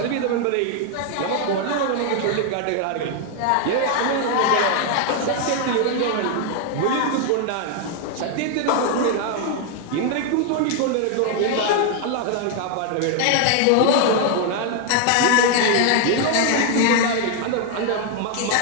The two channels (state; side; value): different; both; correlation 0.00